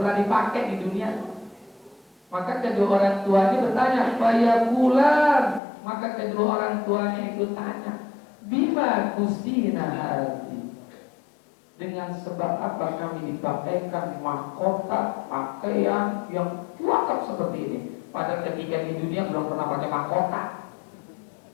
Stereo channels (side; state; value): right; drops out; at 5.6 s